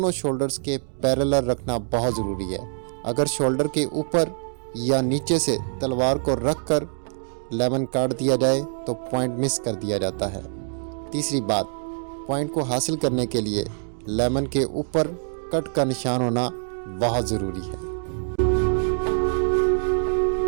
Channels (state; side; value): silent; left; digital silence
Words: شولڈرز کے پیرلل رکھنا بہت ضروری ہے۔ اگر شولڈر کے اوپر یا نیچے سے تلوار کو رکھ کر لیمن کاٹ دیا جائے تو پوائنٹ مس کر دیا جاتا ہے۔ تیسری بات، پوائنٹ کو حاصل کرنے کے لیے لیمن کے اوپر کٹ کا نشان ہونا بہت ضروری ہے۔